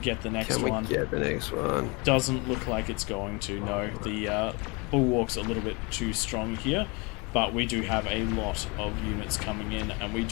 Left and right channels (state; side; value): quieter; right; 28.7 dB